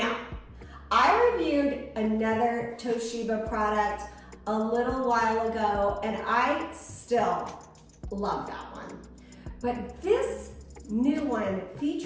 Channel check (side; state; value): both; identical; correlation 1.00